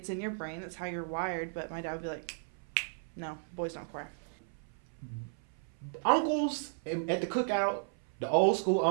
in your brain. That's how you're wired. But my dad would be like, no, boys don't cry. Uncles at the cookout, the old school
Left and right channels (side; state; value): left; silent; 55 dB below the other